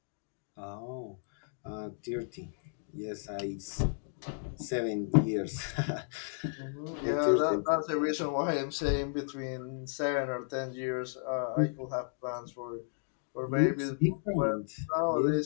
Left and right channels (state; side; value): silent; right; digital silence